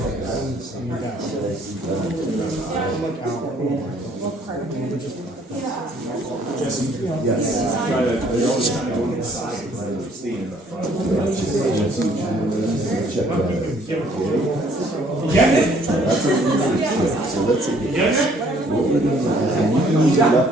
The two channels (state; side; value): normal; both; correlation 0.61